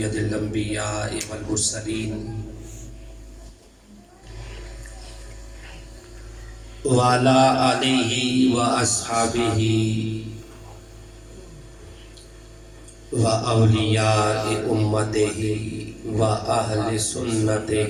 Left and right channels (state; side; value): identical; both; correlation 1.00